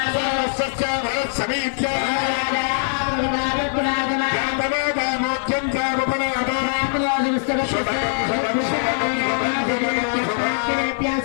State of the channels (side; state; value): right; silent; digital silence